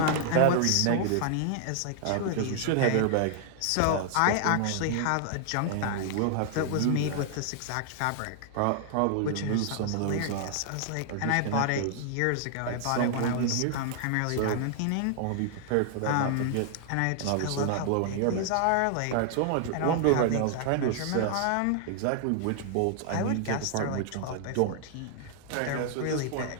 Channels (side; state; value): both; different; correlation 0.00